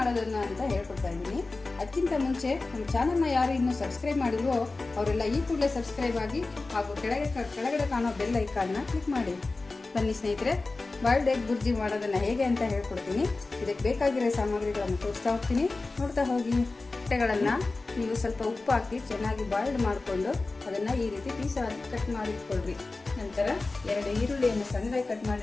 ಅಂತ ಹೇಳ್ಕೊಡ್ತಾ ಇದ್ದೀನಿ. ಅದಕ್ಕಿಂತ ಮುಂಚೆ ನಮ್ಮ ಚಾನಲ್ನ ಯಾರು ಇನ್ನೂ ಸಬ್ಸ್ಕ್ರೈಬ್ ಮಾಡಿಲ್ವೋ ಅವರೆಲ್ಲ ಈ ಕೂಡಲೇ ಸಬ್ಸ್ಕ್ರೈಬ್ ಆಗಿ ಹಾಗೂ ಕೆಳಗಡೆ ಕಾಣೋ ಬೆಲ್ ಐಕಾನ್ನ ಕ್ಲಿಕ್ ಮಾಡಿ. ಬನ್ನಿ ಸ್ನೇಹಿತರೆ, ಬಾಯ್ಲ್ಡ್ ಎಗ್ ಬುರ್ಜಿ ಮಾಡೋದನ್ನು ಹೇಗೆ ಅಂತ ಹೇಳ್ಕೊಡ್ತೀನಿ. ಇದಕ್ಕೆ ಬೇಕಾಗಿರೋ ಸಾಮಗ್ರಿಗಳನ್ನು ತೋರಿಸ್ತಾ ಹೋಗ್ತೀನಿ, ನೋಡ್ತಾ ಹೋಗಿ. ಮೊಟ್ಟೆಗಳನ್ನು ನೀವು ಸ್ವಲ್ಪ ಉಪ್ಪು ಹಾಕಿ ಚೆನ್ನಾಗಿ ಬಾಯ್ಲ್ಡ್ ಮಾಡಿಕೊಂಡು ಅದನ್ನು ಈ ರೀತಿ ಪೀಸಾಗಿ ಕಟ್ ಮಾಡಿಟ್ಕೊಳ್ರಿ. ನಂತರ 2 ಈರುಳ್ಳಿಯನ್ನು ಸಣ್ಣದಾಗಿ ಕಟ್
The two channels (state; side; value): quieter; right; 3.5 dB